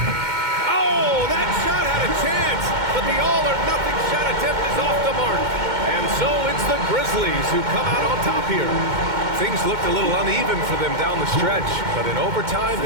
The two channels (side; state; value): left; late; 2.1 ms